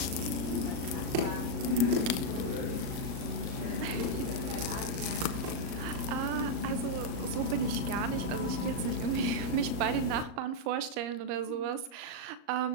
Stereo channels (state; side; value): late; left; 37 ms